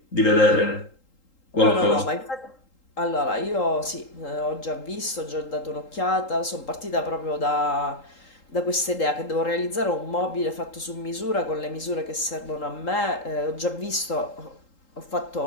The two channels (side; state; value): right; late; 3.8 ms